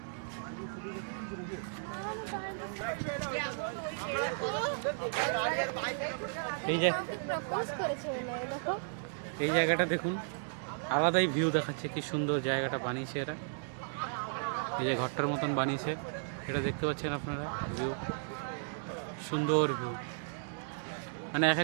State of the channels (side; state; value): left; silent; digital silence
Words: এই জায়গাটা দেখুন, আলাদাই ভিউ দেখাচ্ছে, কি সুন্দর জায়গাটা বানিয়েছে এরা। এই যে ঘরটার মতন বানিয়েছে, এটা দেখতে পাচ্ছেন আপনারা, ভিউ সুন্দর ভিউ। মানে এক